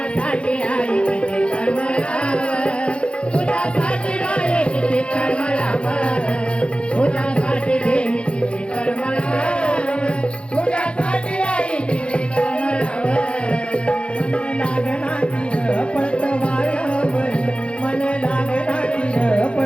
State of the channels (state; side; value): late; right; 0.058 ms